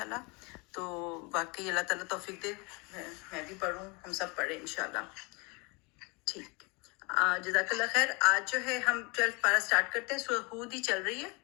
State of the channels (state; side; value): quieter; right; 29.0 dB